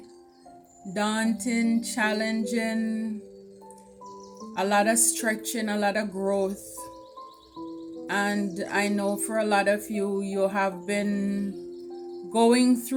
daunting, challenging, a lot of stretching, a lot of growth. And I know for a lot of you, you have been going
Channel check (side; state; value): both; identical; correlation 1.00